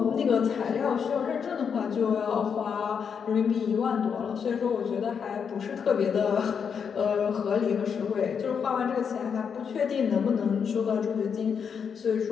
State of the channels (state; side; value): quieter; right; 6.8 dB